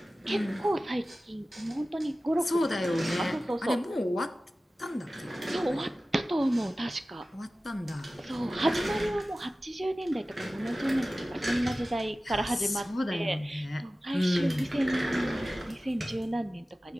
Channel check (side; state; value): both; normal; correlation 0.96